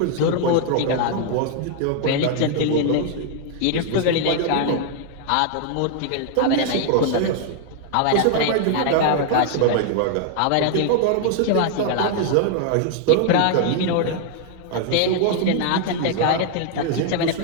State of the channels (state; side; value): different; both; correlation 0.00